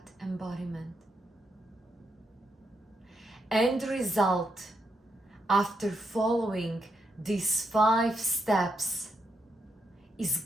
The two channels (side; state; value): both; normal; correlation 0.81